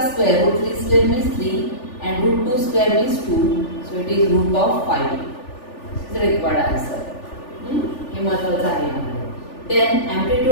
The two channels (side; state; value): right; late; 3.4 ms